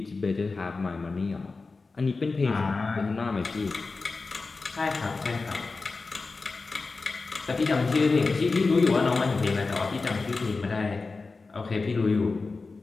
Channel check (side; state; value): right; quieter; 4.0 dB